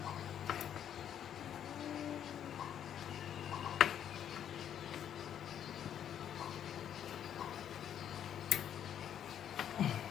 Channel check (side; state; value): right; quieter; 9.6 dB